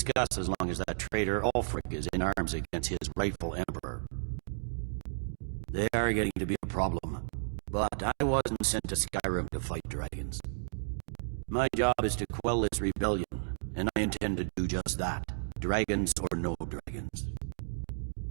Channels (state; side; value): silent; left; digital silence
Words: as long as that traitor Ulfric is in arms against his rightful emperor. They are getting to be a problem, but I wasn't sent to Skyrim to fight dragons. My job is to quell this rebellion, and I intend to do just that, dragons or no dragons.